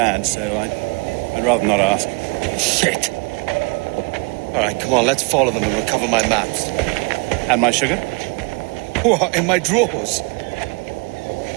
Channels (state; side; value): quieter; left; 31.9 dB